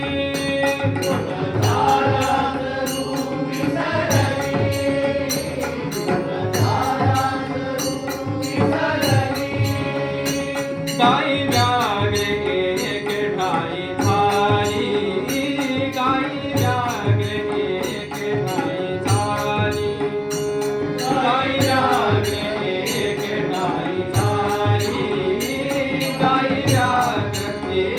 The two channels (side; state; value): both; identical; correlation 1.00